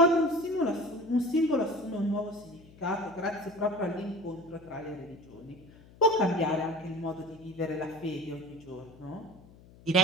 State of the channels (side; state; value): left; noise; hum, 23 dB below the sound